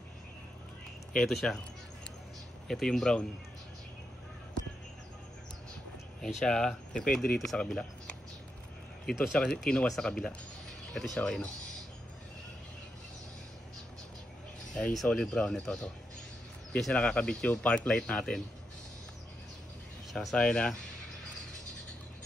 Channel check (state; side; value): normal; both; correlation 0.84